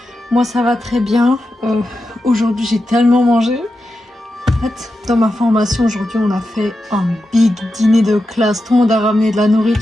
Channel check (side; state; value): both; normal; correlation 0.89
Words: Moi ça va très bien. Aujourd'hui j'ai tellement mangé. En fait, dans ma formation aujourd'hui on a fait un big dîner de classe. Tout le monde a ramené de la